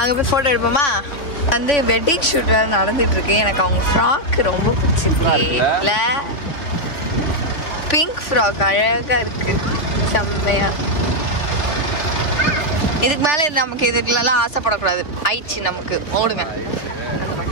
போய் ஃபோட்டோ எடுப்போமா? வந்து வெட்டிங் ஷூட் வேறு நடந்துட்டு இருக்கு. எனக்கு அவங்க ஃப்ராக் ரொம்ப பிடிச்சிருக்கு. இல்லை, பிங்க் ஃப்ராக் அழகாக இருக்கு, செம்மையா. இதுக்கு மேலே நமக்கு இதுக்குலாம் ஆசைப்படக்கூடாது. ஆயிடுச்சு நமக்கு, ஓடுங்க.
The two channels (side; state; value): right; late; 3.5 ms